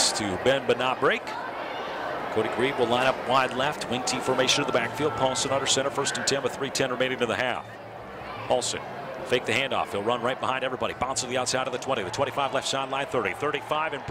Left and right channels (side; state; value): both; identical; correlation 1.00